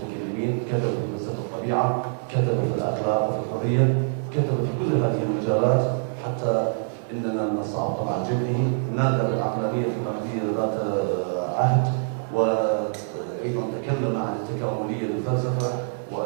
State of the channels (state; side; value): silent; left; digital silence